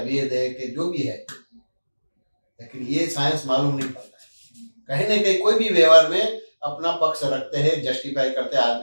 है कि जो भी है, लेकिन ये साइंस मालूम नहीं पड़ता है। कहीं ना कहीं कोई भी व्यवहार में अपना पक्ष रखते हैं, जस्टिफाई करते हैं,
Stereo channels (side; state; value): both; inverted; correlation -1.00